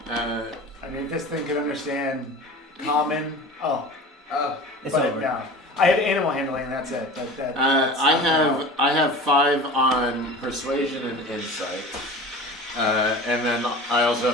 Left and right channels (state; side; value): normal; both; correlation 0.37